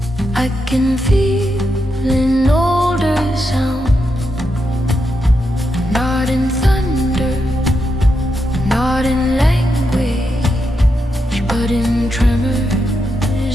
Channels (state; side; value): normal; both; correlation 0.84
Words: I can feel an older sound. Not in thunder, not in language, but in